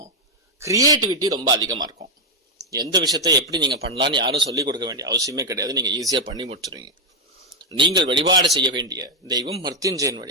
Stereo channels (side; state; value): both; normal; correlation 0.02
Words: கிரியேட்டிவிட்டி ரொம்ப அதிகமா இருக்கும். எந்த விஷயத்தை எப்படி நீங்க பண்ணலாம்னு யாரும் சொல்லிக் கொடுக்க வேண்டிய அவசியமே கிடையாது. நீங்க ஈஸியா பண்ணி முடிச்சிருவீங்க. நீங்கள் வழிபாடு செய்ய வேண்டிய தெய்வம் மிருத்யுஞ்சயன்